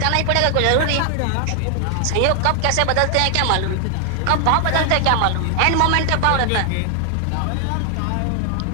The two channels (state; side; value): different; both; correlation 0.00